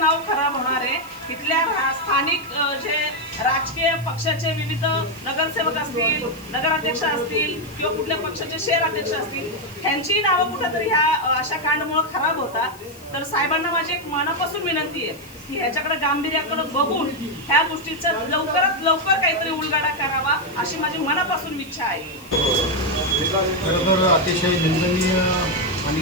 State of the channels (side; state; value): left; noise; hiss, 22 dB below the sound